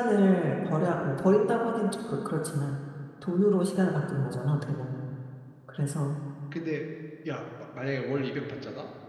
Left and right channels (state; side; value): identical; both; correlation 1.00